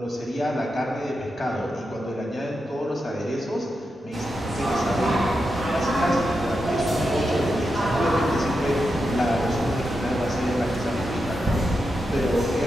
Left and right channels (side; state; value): both; normal; correlation 0.87